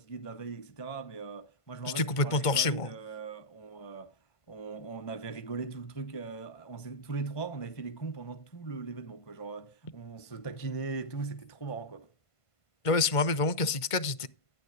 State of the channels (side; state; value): right; late; 1.5 ms